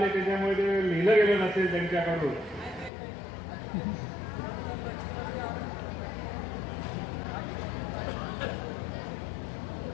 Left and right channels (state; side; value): drops out; right; at 2.9 s